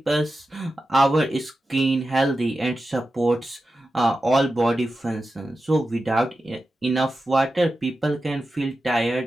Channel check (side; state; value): both; normal; correlation 0.92